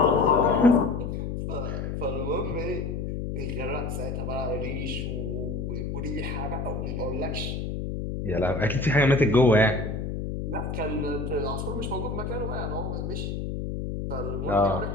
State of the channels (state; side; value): noise; left; hum, 4 dB below the sound